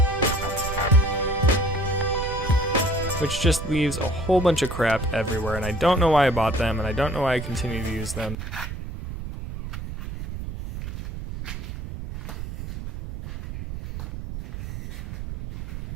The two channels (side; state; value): right; noise; rumble, 8 dB below the sound